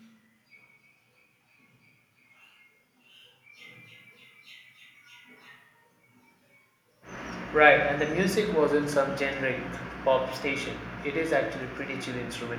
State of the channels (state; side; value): identical; both; correlation 1.00